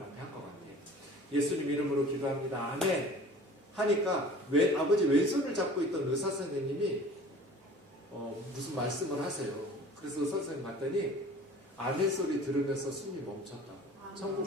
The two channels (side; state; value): both; normal; correlation 0.45